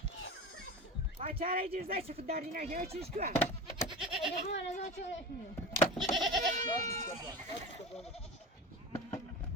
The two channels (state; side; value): normal; both; correlation 0.29